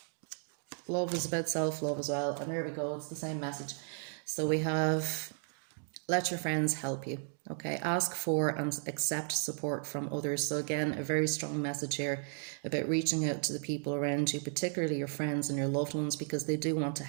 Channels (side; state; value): left; silent; 55 dB below the other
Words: love is about self-love as well. And there we go, it's the same message. So we have, let your friends help you. Okay, ask for and accept support from others. So again, a very strong message here about reaching out to the people around you, particularly your friends and your loved ones, because they do want to